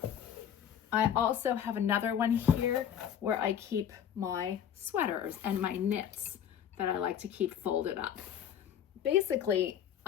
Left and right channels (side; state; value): right; quieter; 9.3 dB